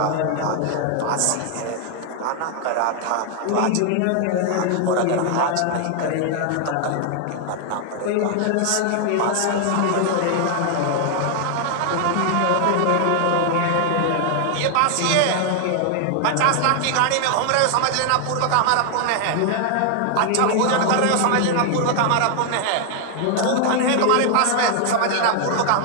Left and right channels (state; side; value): different; both; correlation 0.00